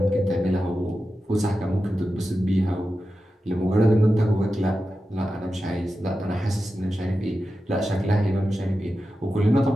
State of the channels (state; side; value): normal; both; correlation 0.91